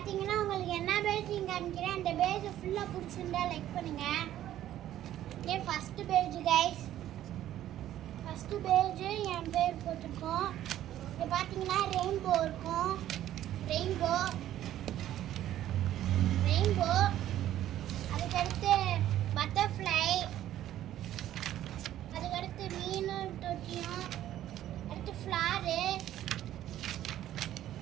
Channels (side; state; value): left; quieter; 12.5 dB